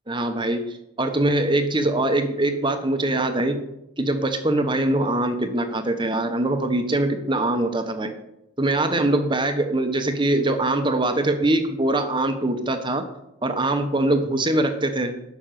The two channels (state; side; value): normal; both; correlation 0.51